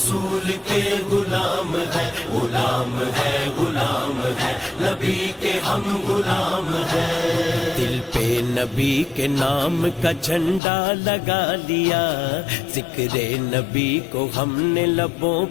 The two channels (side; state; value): right; drops out; at 10.6 s